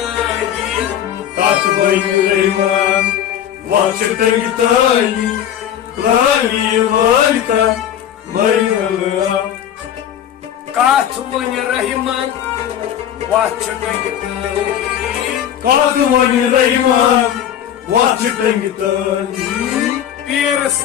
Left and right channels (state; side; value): quieter; right; 10.2 dB